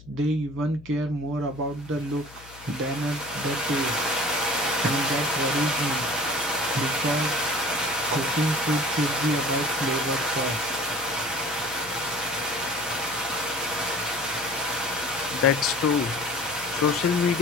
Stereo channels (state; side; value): noise; left; hum, 21 dB below the sound